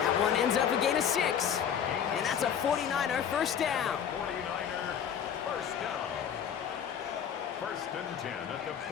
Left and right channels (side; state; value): right; quieter; 8.4 dB